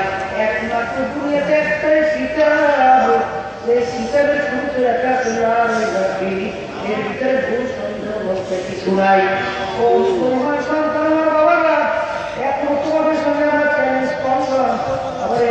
একমাত্র দুনিয়াতে একটাই শিকার, সেই শিকারের শুরুতে রাখা এর ভিতরে ভুল সন্দেহ বলতে কিছু নাই। তোমার সন্তান আমার বাবারা এখন তোমাদের সঙ্গে আমরা চ্যালেঞ্জ করলাম, আবার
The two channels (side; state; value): both; identical; correlation 1.00